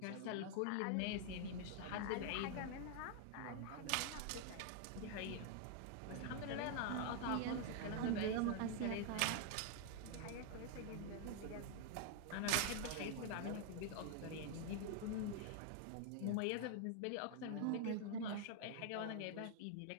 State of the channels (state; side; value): different; both; correlation 0.00